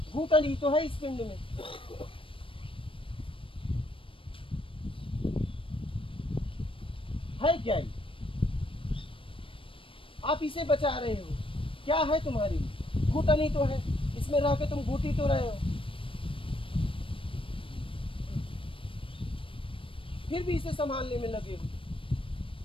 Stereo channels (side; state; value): right; late; 0.25 ms